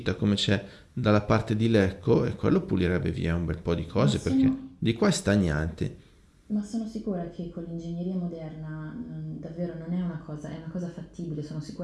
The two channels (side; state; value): both; identical; correlation 1.00